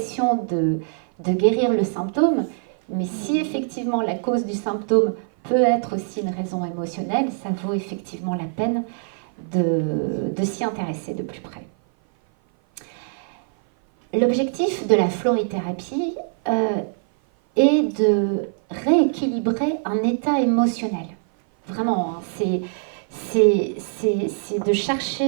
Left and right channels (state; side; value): silent; left; 56 dB below the other